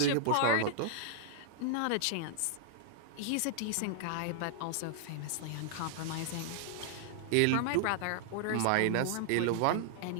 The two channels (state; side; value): different; both; correlation -0.01